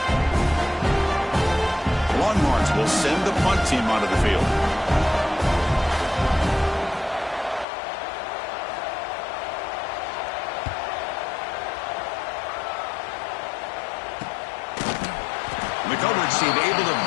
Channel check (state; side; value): drops out; right; at 7.7 s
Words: Longhorns will send the punt team onto the field. The coverage team able to